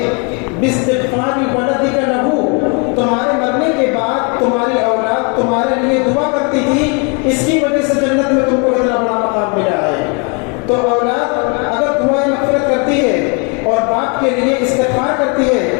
باستغفار ولدک لہ, تمہارے مرنے کے بعد تمہاری اولاد تمہارے لیے دعا کرتی تھی, اس کی وجہ سے جنت میں تم کو اتنا بڑا مقام ملا ہے. تو اولاد اگر دعائیں مغفرت کرتی ہے اور باپ کے لیے استغفار کرتی ہے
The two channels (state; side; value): quieter; right; 34.7 dB